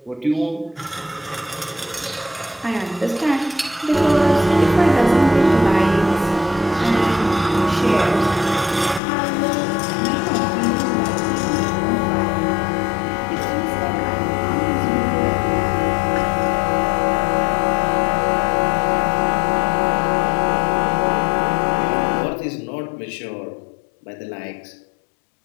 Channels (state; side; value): drops out; right; at 9.0 s